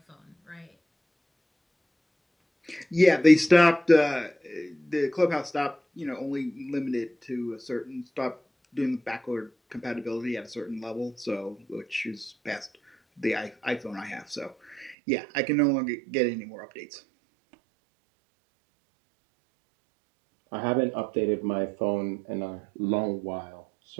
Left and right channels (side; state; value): left; drops out; at 15.0 s